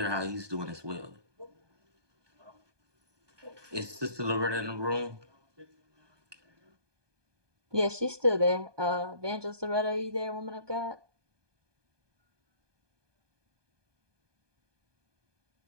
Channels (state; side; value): late; left; 1.2 ms